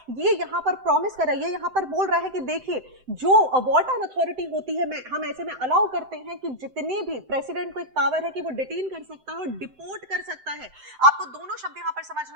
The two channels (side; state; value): left; late; 7.8 ms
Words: ये यहां पर प्रॉमिस कर रहा है, ये यहां पर बोल रहा है कि देखिए, जो वार्टन अथॉरिटी होती है, हम ऐसे में अलाउ करते हैं कि जितने भी प्रेसिडेंट को एक पावर है कि वो डिटेन कर सकता है और डिपोर्ट कर सकता है। आपको दोनों शब्द यहां पर